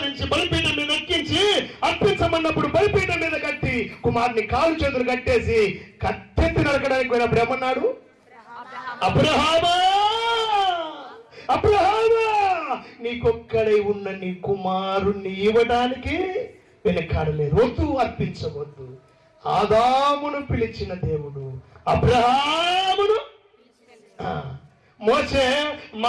బలిపీఠం మీద ఎక్కించి అర్పించమన్నప్పుడు బలిపీఠం మీద కట్టి కుమారుని కాలు చేతులు కట్టేసి కత్తెత్తి నరకడానికి పోయినప్పుడు ఏమన్నాడు? అబ్రహామా, నీకొక్కడై ఉన్న నీ కుమారుణ్ణి ఇవ్వడానికి వెనకాడలేదు. వద్దు, అర్పించవద్దు. ఆదామును పిలిచిన దేవుడు అబ్రహామును. మోసే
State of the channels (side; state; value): both; identical; correlation 1.00